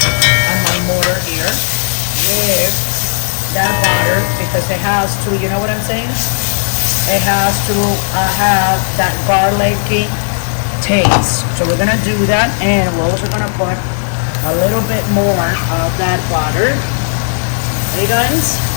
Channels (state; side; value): silent; right; digital silence